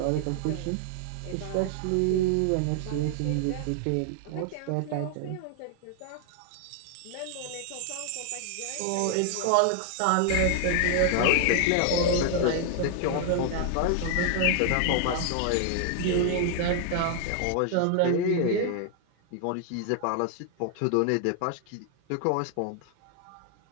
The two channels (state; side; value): different; both; correlation 0.00